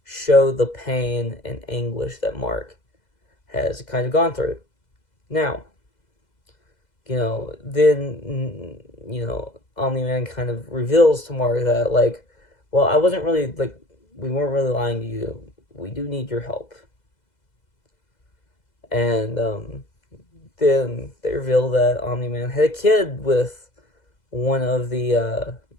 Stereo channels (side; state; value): right; late; 2.0 ms